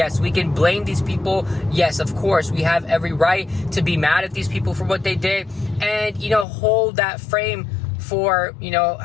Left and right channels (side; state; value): right; drops out; at 6.5 s